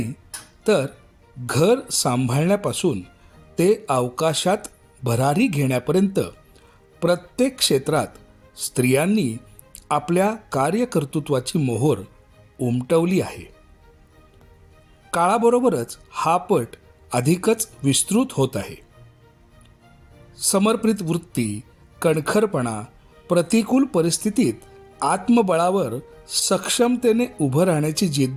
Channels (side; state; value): both; identical; correlation 1.00